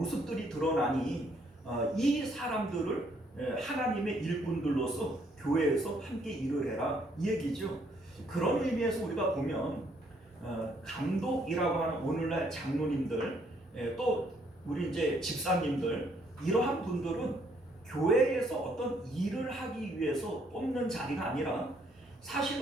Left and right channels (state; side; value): normal; both; correlation 0.68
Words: 드러나니 이 사람들을 하나님의 일꾼들로서 교회에서 함께 일을 해라, 이 얘기죠. 그런 의미에서 우리가 보면 감독이라고 하는 오늘날 장로님들, 또 우리 이제 집사님들, 이러한 분들은 교회에서 어떤 일을 하기 위해서 뽑는 자리가 아니라